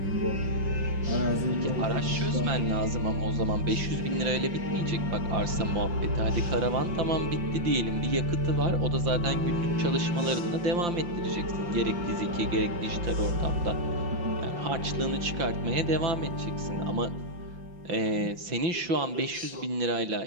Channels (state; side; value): late; left; 5.8 ms